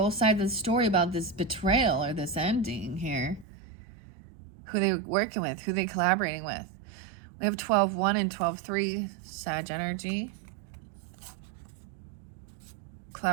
sides of the story about this betrayal or this ending here. who they working with, who they collaborating with. We have 12-1 and 12-3, Sag energy.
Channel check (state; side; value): drops out; left; at 3.5 s